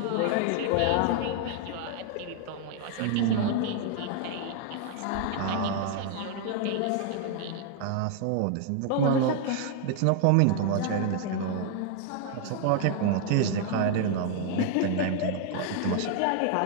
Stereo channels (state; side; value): different; both; correlation 0.00